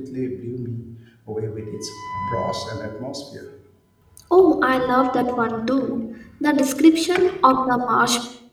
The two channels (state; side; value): identical; both; correlation 1.00